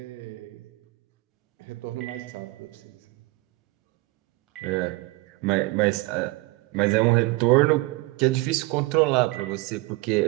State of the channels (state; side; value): quieter; left; 22.3 dB